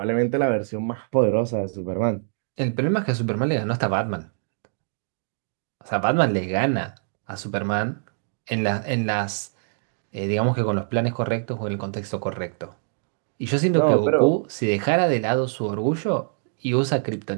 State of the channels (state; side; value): silent; left; digital silence